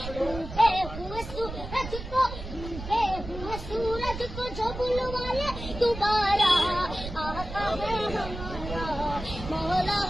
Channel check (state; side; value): noise; right; rumble, 9 dB below the sound